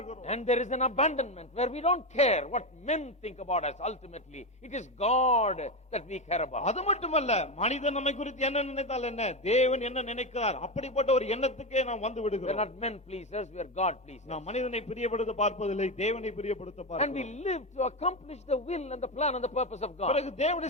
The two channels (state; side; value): normal; both; correlation 0.14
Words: And there is an abandonment where we don't care what men think about us. Ultimately it is God that we care about. அது மட்டுமல்ல, மனிதன் நம்மை குறித்து என்ன நினைத்தால் என்ன, தேவன் என்ன நினைக்கிறார், அப்படிப்பட்ட ஒரு எண்ணத்துக்கே நாம் வந்து We are விடுகிறோம். not men pleasers, we are God pleasers. நாம் மனிதனை பிரியப்படுத்த பார்ப்பதில்லை, தேவனை பிரியப்படுத்த And பார்க்கிறோம். we live to accomplish the will and the plan and the purpose of God. பிறகு